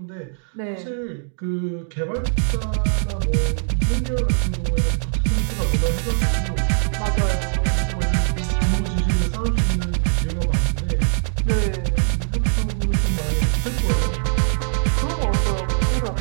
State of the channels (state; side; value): silent; left; digital silence